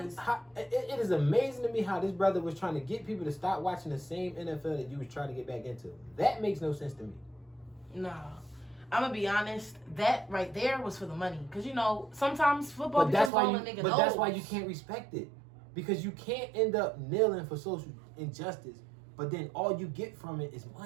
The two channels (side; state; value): left; drops out; at 13.3 s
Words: it is amazing to me how this brother was trying to get people to stop watching the same NFL that you was trying to get back into. That makes no sense to me. No. I'm gonna be honest. That right there was for the money, because sometimes football becomes all a nigga knows. But that's why you can't respect it, because you can't end up kneeling for social injustice, but then all you get from it is